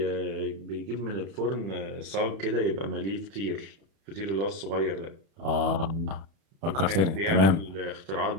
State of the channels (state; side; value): late; left; 31 ms